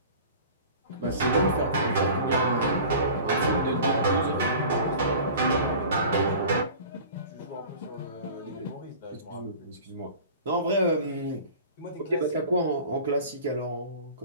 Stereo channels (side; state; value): both; inverted; correlation -0.41